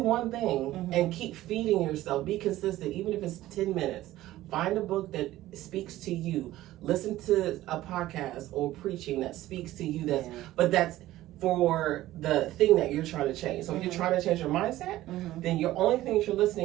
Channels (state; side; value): quieter; left; 15.4 dB